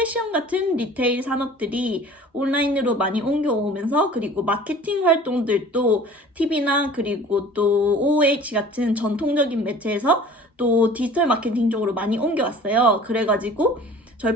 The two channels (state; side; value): normal; both; correlation 0.45